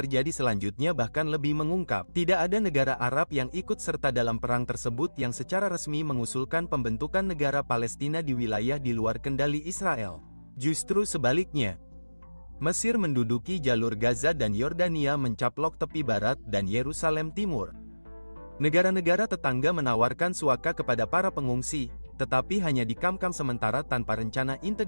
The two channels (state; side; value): inverted; both; correlation -1.00